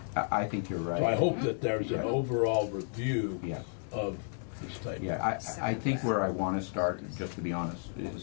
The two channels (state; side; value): silent; right; 56 dB below the other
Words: I think you're right. So I hope that there's an overall review of this type. Yeah, I think where I want to start, just to be honest, is